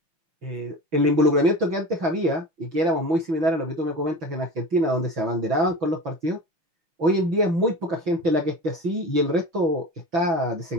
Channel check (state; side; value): late; left; 6.1 ms